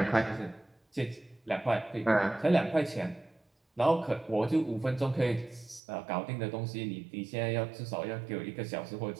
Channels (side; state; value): left; drops out; at 5.8 s